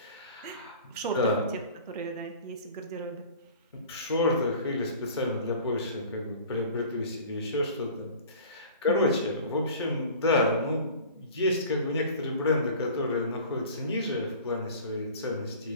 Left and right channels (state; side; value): inverted; both; correlation -0.42